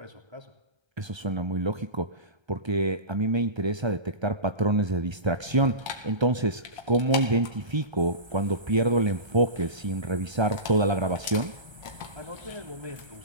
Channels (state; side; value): late; left; 1.3 ms